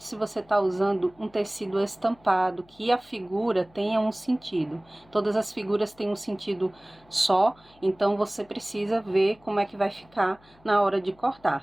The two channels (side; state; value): left; noise; hum, 29 dB below the sound